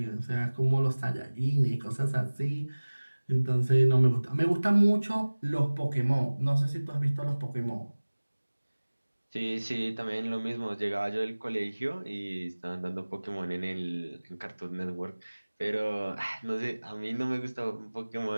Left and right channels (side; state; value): both; inverted; correlation -1.00